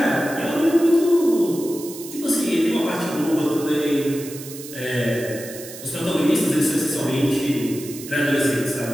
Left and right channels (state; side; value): noise; right; hiss, 13 dB below the sound